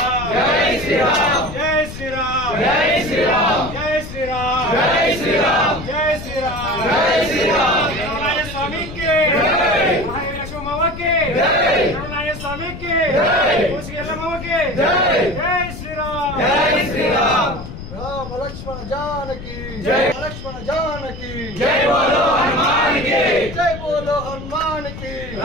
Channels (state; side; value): noise; left; rumble, 11 dB below the sound